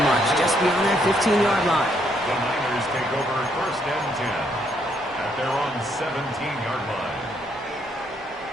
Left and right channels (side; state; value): both; normal; correlation 0.72